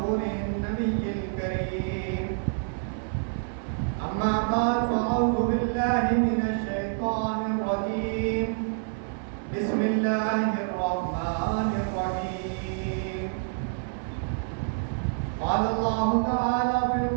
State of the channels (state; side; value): silent; left; 60 dB below the other